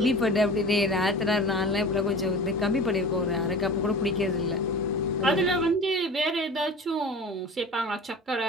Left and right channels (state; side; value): normal; both; correlation 0.37